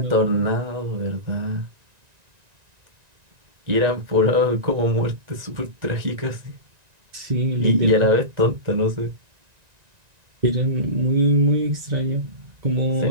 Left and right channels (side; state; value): left; late; 1.9 ms